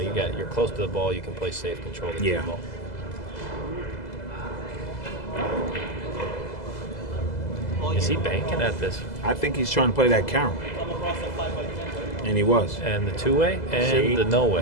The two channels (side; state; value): right; late; 2.0 ms